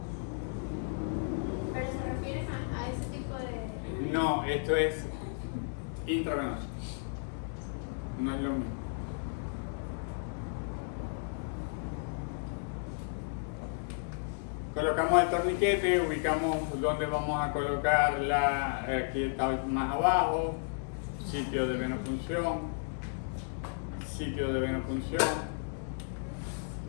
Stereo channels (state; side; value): silent; right; digital silence